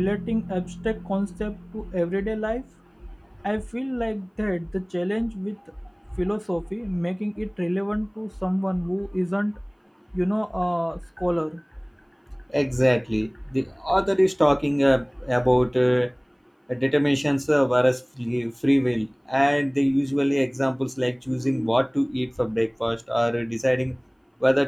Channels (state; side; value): identical; both; correlation 1.00